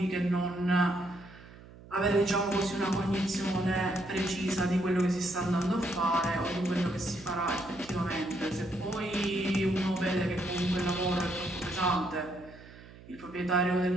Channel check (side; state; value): right; noise; hum, 20 dB below the sound